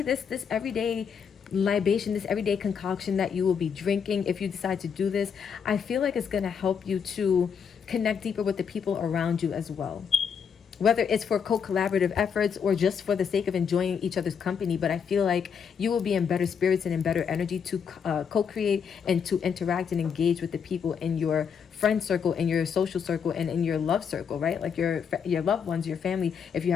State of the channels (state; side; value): quieter; right; 6.9 dB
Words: this everyday libation, this everyday concoction that you will be drinking if you decide to do this, I feel like it's going to help you to connect deeper with the people around you as well. Whether it's for co-collaborative efforts or just for the sake of enjoying each other's company. But I feel like you will be in better spirits and in better energy to co-create and to interact and engage with the people in your friend circle, in your social circle, and in your love circle, right? Like your loved ones, your family, if you